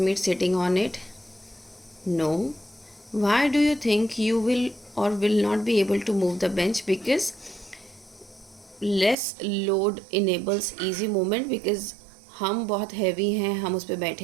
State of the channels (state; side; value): drops out; left; at 9.2 s